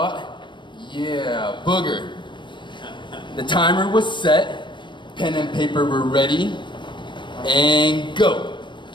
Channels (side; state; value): right; late; 0.23 ms